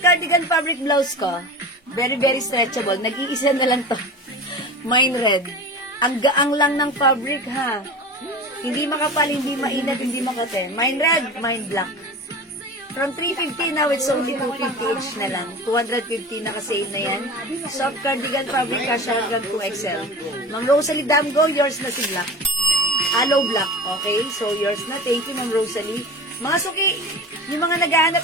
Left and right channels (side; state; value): both; normal; correlation 0.33